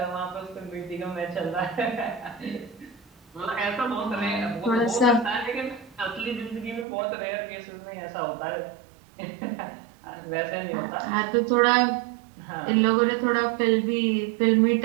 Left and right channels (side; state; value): left; drops out; at 6.9 s